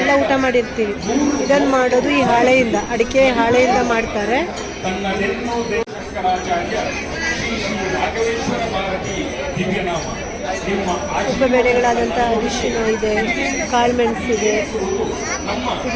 ಊಟ ಮಾಡಿರ್ತೀವಿ. ಇದನ್ನು ಮಾಡೋದು ಈ ಹಾಳೆಯಿಂದ, ಅಡಿಕೆ ಹಾಳೆಯಿಂದ ಮಾಡ್ತಾರೆ. ಉಪಬೆಳೆಗಳಾದಂಥ ಅರಿಶಿನ ಇದೆ, ಕಾಳುಮೆಣಸಿದೆ,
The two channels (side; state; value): both; identical; correlation 1.00